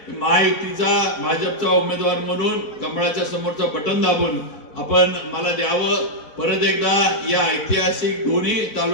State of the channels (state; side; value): late; right; 4.1 ms